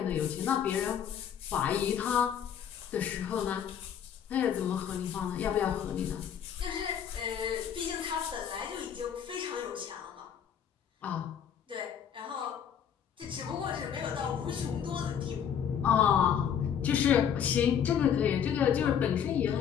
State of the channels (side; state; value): right; quieter; 8.5 dB